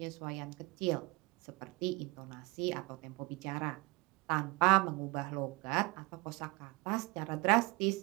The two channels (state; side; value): quieter; left; 24.9 dB